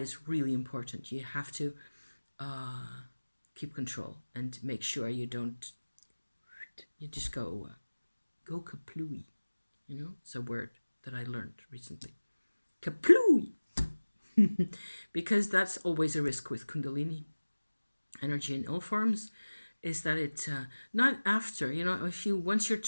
really important. You have to keep control and make sure you don't, you just go kaplooey. You know, it's a word that I learned recently. Kaplooey! Because that's always a risk with Kundalini energy in all forms, is that it, not after, you know, if you, once you're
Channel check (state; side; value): inverted; both; correlation -1.00